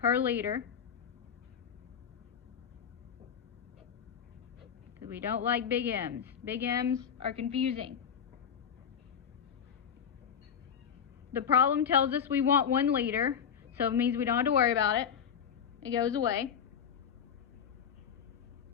per liter. Because we don't like big M's. Big M's are confusing. The problem tells us we want 1 liter, so it means we don't have to worry about it. It goes away.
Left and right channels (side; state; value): right; quieter; 7.8 dB